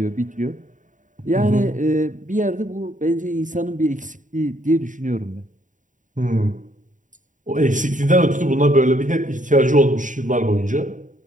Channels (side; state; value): left; late; 0.37 ms